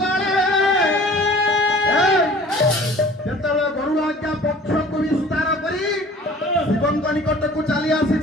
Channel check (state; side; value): normal; both; correlation 0.48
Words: ଯେତେବେଳେ ଗରୁଡ଼ ଆଜ୍ଞା ପକ୍ଷକୁ ବିସ୍ତାର କରି ଶିବଙ୍କ ନିକଟକୁ ଚାଲି